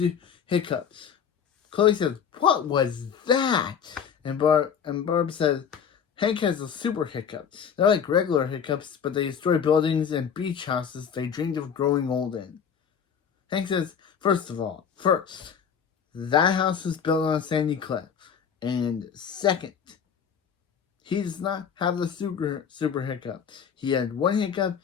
hiccups. Chloe says, what was that? And Barb says, Hank has a super hiccup. They're like regular hiccups, but they destroy buildings and beach houses they dreamed of growing old in. Hank says, first, that house was built on a sandy cliff. And second, he does not have the super hiccup. He had one hiccup,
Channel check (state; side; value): quieter; right; 7.4 dB